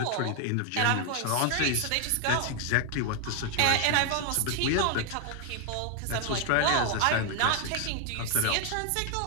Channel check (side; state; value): both; different; correlation 0.00